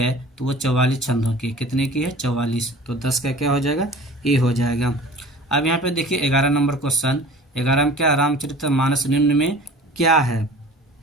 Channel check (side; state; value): both; normal; correlation 0.43